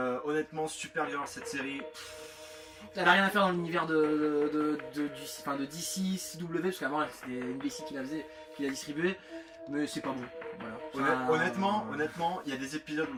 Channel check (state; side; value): identical; both; correlation 1.00